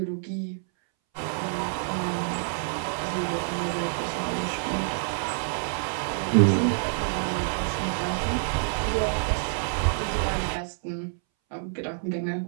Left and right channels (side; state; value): left; silent; 60 dB below the other